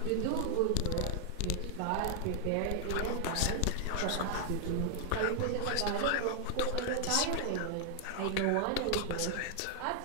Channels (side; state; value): both; different; correlation 0.00